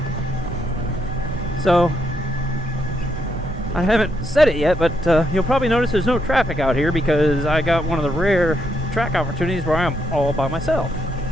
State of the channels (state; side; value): normal; both; correlation 0.78